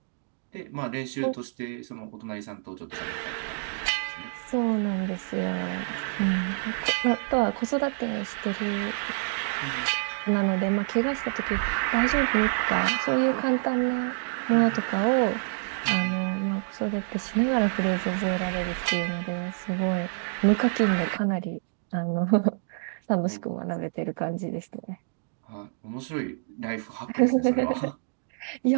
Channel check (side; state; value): left; silent; digital silence